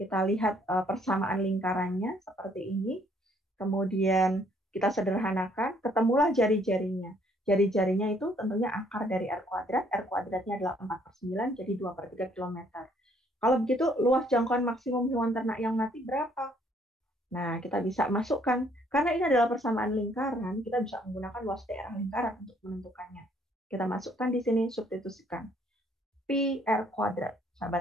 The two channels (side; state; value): both; normal; correlation 0.64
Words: lihat persamaan lingkarannya seperti ini. Kemudian kita sederhanakan, ketemulah jari-jarinya. Jari-jarinya itu tentunya akar dari R kuadrat. R kuadratnya adalah 4/9, jadi 2/3 kilometer. Kalau begitu, luas jangkauan maksimum hewan ternak yang mati berapa? Nah, kita bisa masukkan. Karena ini adalah persamaan lingkaran, kita bisa menggunakan luas daerah lingkaran untuk menentukannya. Kita masukkan di sini, substitusikan. Pi R kuadrat.